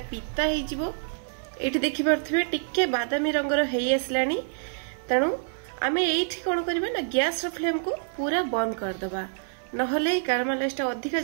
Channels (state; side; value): silent; left; 60 dB below the other